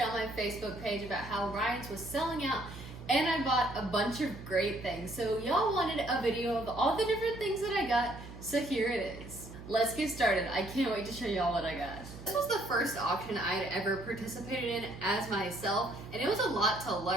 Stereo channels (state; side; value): noise; right; hum, 14 dB below the sound